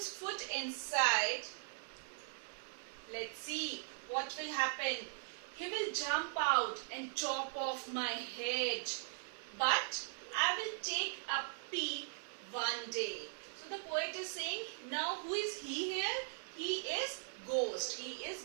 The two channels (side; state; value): left; silent; 51 dB below the other